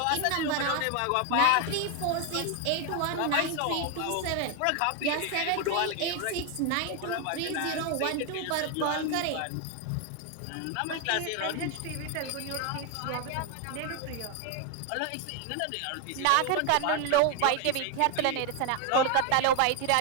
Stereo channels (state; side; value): different; both; correlation 0.01